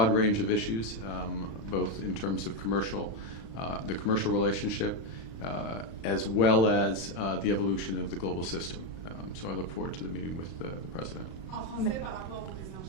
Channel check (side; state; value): right; late; 36 ms